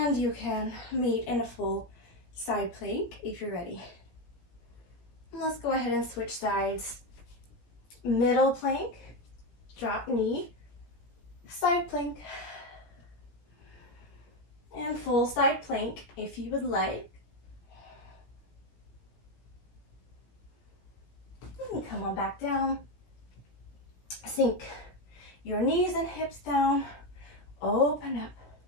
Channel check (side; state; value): right; late; 17 ms